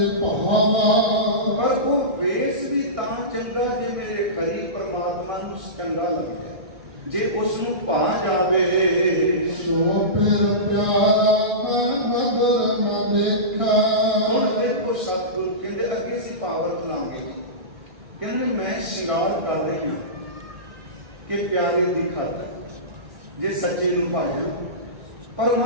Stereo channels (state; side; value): late; left; 1.6 ms